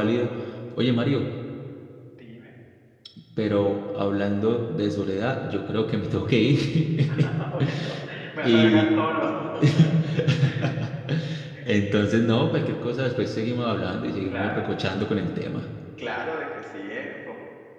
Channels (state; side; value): identical; both; correlation 1.00